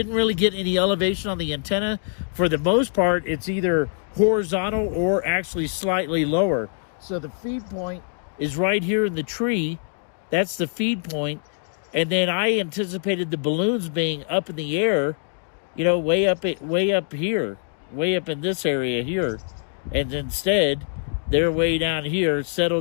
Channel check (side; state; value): right; silent; digital silence